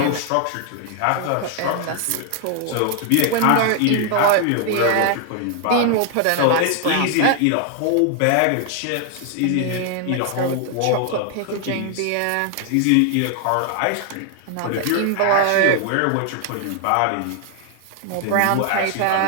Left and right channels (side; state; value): both; different; correlation 0.00